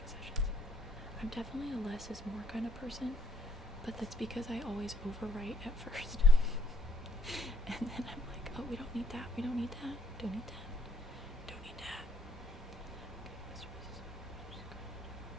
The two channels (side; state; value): both; normal; correlation 0.67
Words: sessions. I'm definitely a less is more kind of person, but that's because I always overwrite at first. And then I'm like, oh, we don't need that, don't need that.